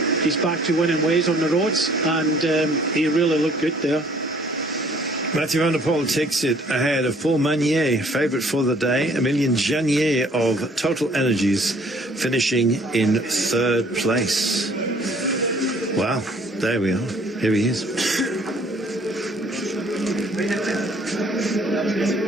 He's back to winning ways on the roads, and he really looked good there. Mathieu van der Poel takes it ahead of Paul Magnier, favourite for the day. Emilien Janier of Total Energies finishing in third place. Wow, There we are. Here he is.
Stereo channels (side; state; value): both; normal; correlation 0.58